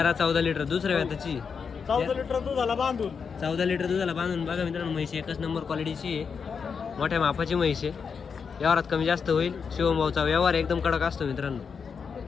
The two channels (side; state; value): right; quieter; 6.0 dB